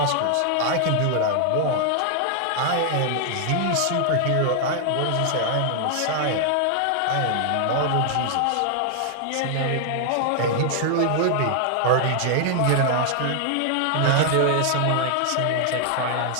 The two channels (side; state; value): both; different; correlation 0.00